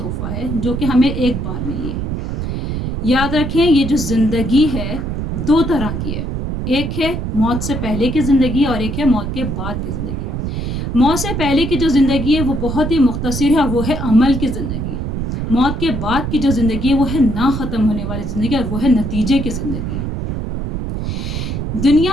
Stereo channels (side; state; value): right; noise; rumble, 3 dB below the sound